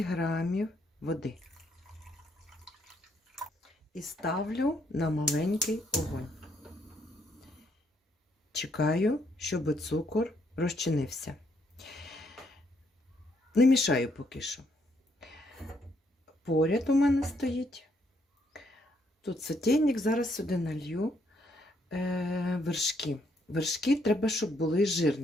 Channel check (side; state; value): both; normal; correlation 0.72